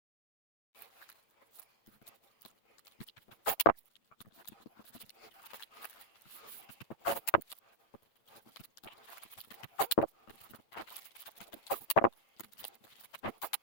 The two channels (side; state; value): right; late; 9.0 ms